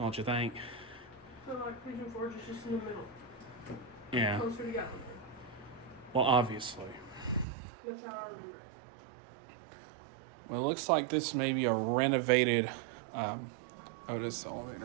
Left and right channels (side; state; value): left; drops out; at 7.5 s